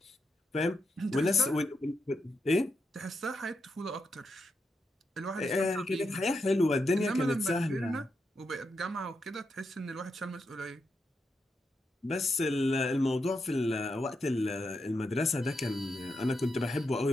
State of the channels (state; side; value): normal; both; correlation 0.84